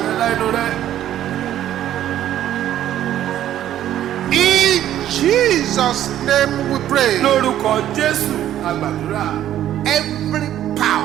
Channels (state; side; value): quieter; left; 11.9 dB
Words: In Jesus' name we pray. Every